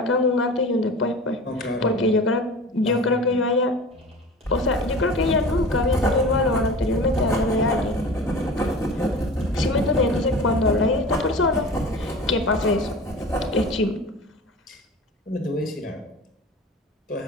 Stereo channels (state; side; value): normal; both; correlation 0.37